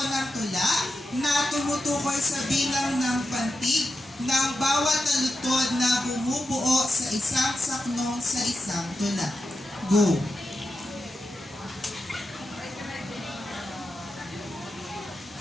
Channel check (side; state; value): both; normal; correlation 0.89